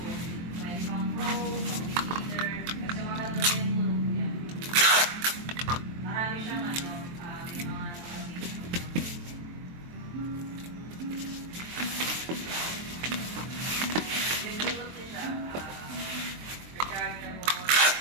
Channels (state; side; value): late; left; 23 ms